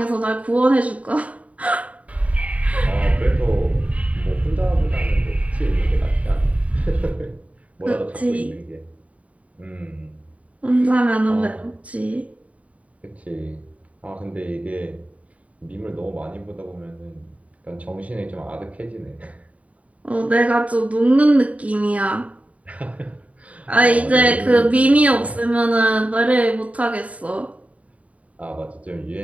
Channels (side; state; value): left; late; 0.068 ms